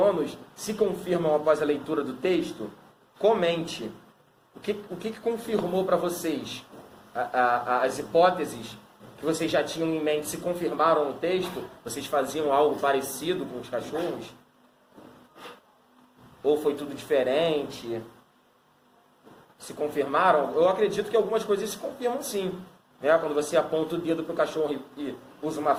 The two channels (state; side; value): identical; both; correlation 1.00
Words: se confirmam após a leitura do texto? Comente. O que confirmou para vocês? As hipóteses que vocês já tinham em mente se confirmaram no texto? Vocês faziam algo parecido com os cachorros? Ou foi tudo diferente? Se confirmaram? Eu acredito que algumas coisas se confirmam sim. Né? Quando você aponta o dedo para o cachorro e usa uma